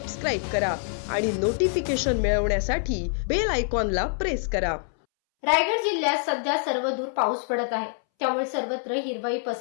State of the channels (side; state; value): right; silent; 61 dB below the other